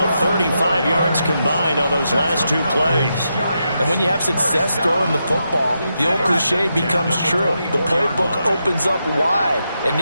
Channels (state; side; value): inverted; both; correlation -0.85